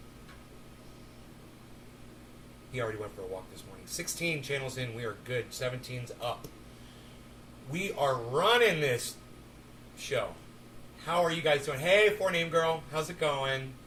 He already went for a walk this morning. 16 channels in. We are good. 17's up. We are running this show. How are you guys doing? Hey, 4Name Girl. How's it going?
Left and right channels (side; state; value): both; identical; correlation 1.00